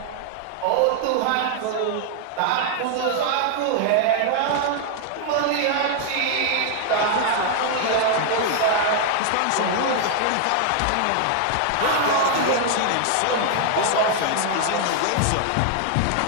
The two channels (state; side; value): different; both; correlation 0.00